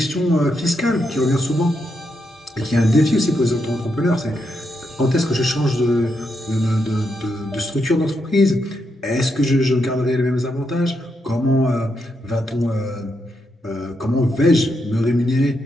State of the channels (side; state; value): both; normal; correlation 0.82